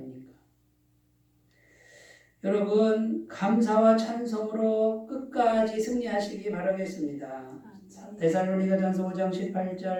여러분 감사와 찬송으로 끝까지 승리하시기 바라겠습니다. 데살로니가전서 5장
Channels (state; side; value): identical; both; correlation 1.00